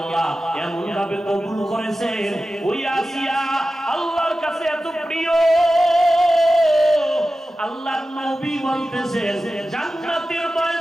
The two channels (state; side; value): normal; both; correlation 0.94